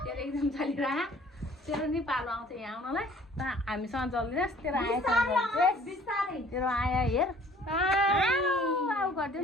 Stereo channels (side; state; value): both; normal; correlation 0.54